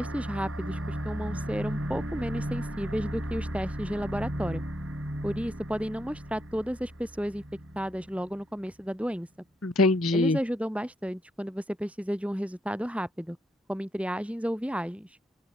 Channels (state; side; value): normal; both; correlation 0.79